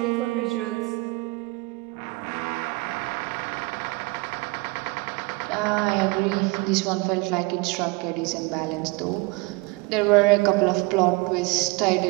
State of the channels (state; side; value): quieter; left; 25.5 dB